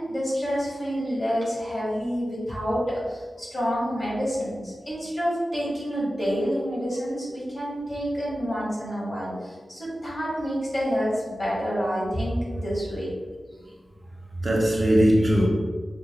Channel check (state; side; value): normal; both; correlation 0.94